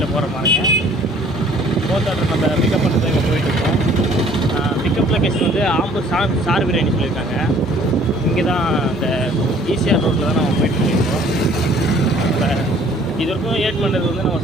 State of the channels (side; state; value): both; normal; correlation 0.56